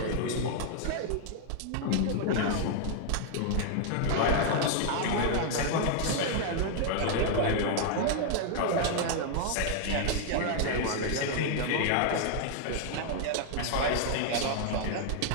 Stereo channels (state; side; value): different; both; correlation 0.00